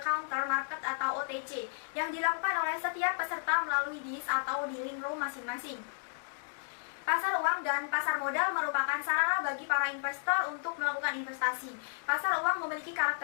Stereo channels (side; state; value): right; silent; digital silence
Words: counter market atau OTC yang dilakukan oleh setiap peserta melalui dis atau dealing room masing-masing. Pasar uang dan pasar modal merupakan sarana bagi para investor untuk melakukan investasi. Pasar uang memiliki